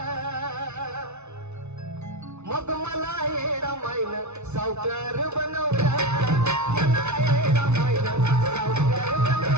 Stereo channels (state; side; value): late; left; 0.82 ms